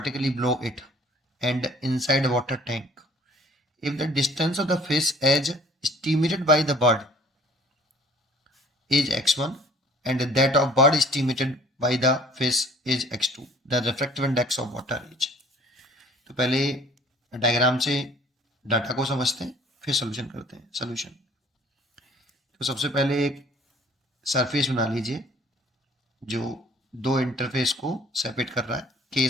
below it and inside a water tank. If the distance of the fish as estimated by the bird is x1 and that of bird estimated by the fish is x2, the refractive index of water is। तो पहले diagram से data को समझते हैं, फिर solution करते हैं। Solution तो सबसे पहले एक सरफेस बना लीजिए जो दो इंटरफेस को सेपरेट कर रहा है।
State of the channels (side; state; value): both; normal; correlation 0.54